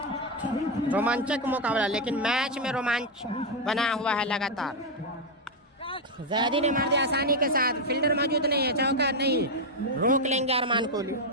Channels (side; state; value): both; normal; correlation 0.02